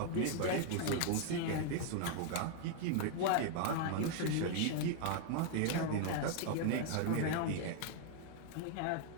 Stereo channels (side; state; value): both; different; correlation 0.00